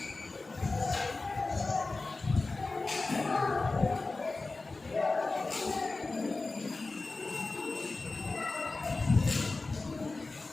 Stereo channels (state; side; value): quieter; right; 3.5 dB